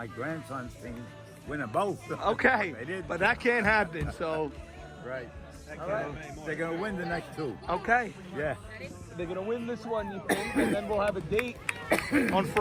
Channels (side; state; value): both; identical; correlation 1.00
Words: grandson's team win them both. Okay, They did. but that can't happen. So, Right. They're going to win the next 2. okay, Yeah. they're gonna win this one, you think, and then we'll have a date on